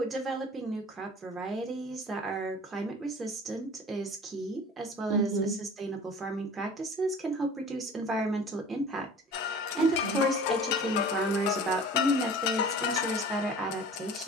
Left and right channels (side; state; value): both; normal; correlation 0.42